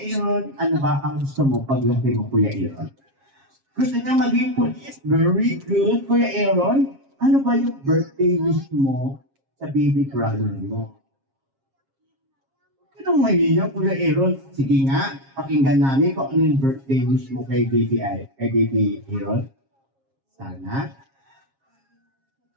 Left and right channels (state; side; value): late; left; 7.4 ms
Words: Aaron, ano ba ang gusto mo paglaki mo, Kuya Aaron? Gusto niya maging police? Very good, Kuya Aaron. Ano ba yung birthday wish mo sa baby brother mo? Anong mahiya, Kuya Aaron? Sige nga, pakinggan namin kung ano yung birthday wish mo kay baby Aaron. Sana.